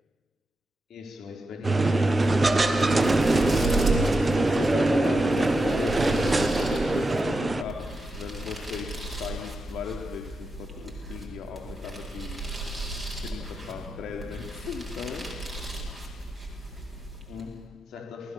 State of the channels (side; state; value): both; normal; correlation 0.89